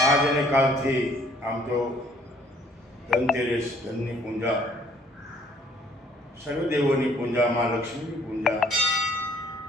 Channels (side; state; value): both; normal; correlation 0.60